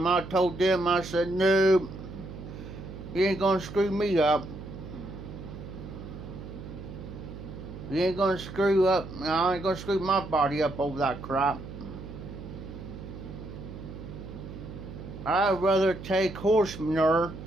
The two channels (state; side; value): noise; right; hum, 11 dB below the sound